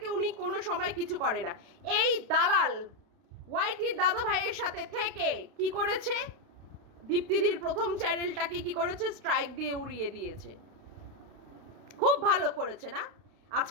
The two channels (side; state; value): left; late; 32 ms